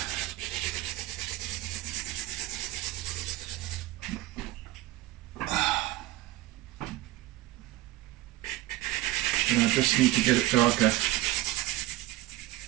But I just need to get it darker.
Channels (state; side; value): quieter; left; 16.9 dB